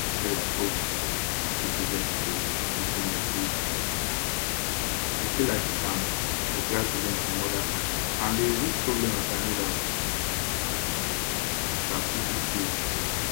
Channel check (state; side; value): silent; right; digital silence